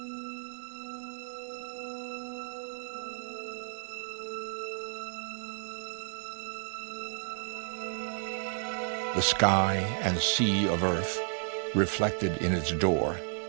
The sky and sea of Earth reflected in its door,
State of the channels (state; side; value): silent; left; 56 dB below the other